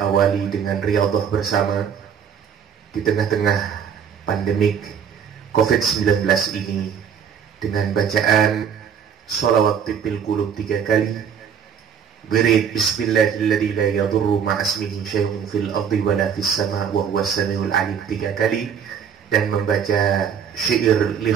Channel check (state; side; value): quieter; left; 7.6 dB